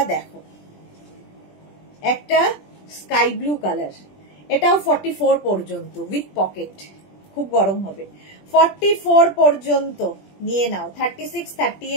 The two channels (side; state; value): right; late; 20 ms